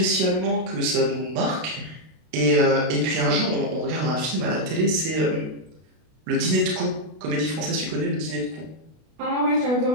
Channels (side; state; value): left; late; 32 ms